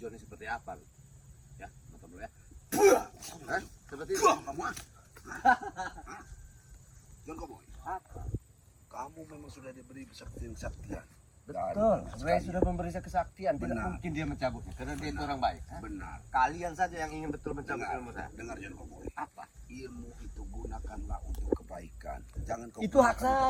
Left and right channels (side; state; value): both; identical; correlation 1.00